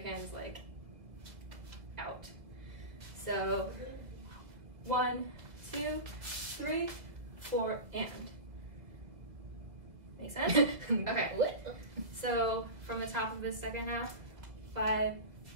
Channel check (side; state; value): left; late; 1.7 ms